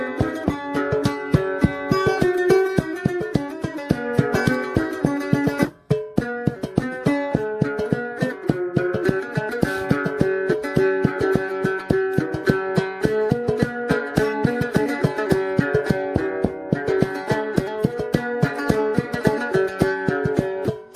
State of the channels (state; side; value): identical; both; correlation 1.00